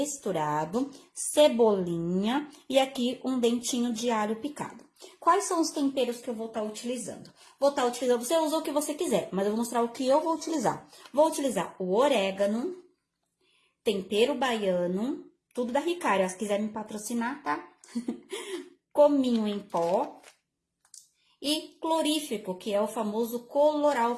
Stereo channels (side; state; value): both; identical; correlation 1.00